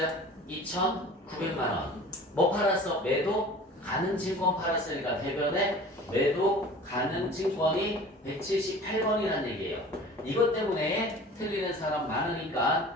2,900만원 뭐 팔았어? 매도 가능 증권 팔았으니까 대변에 매도 가능 증권이 178번이라는 얘기예요. 이것 때문에 틀리는 사람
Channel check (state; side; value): normal; both; correlation 0.42